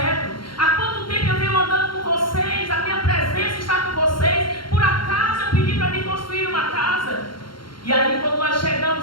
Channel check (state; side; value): late; right; 0.73 ms